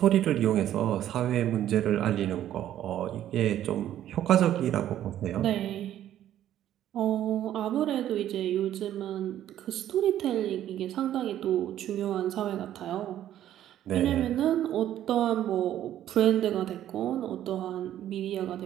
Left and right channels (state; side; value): quieter; left; 11.8 dB